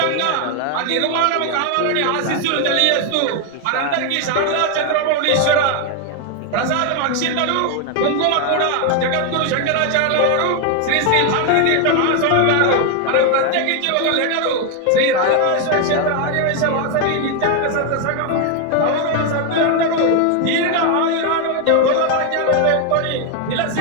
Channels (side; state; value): both; different; correlation 0.01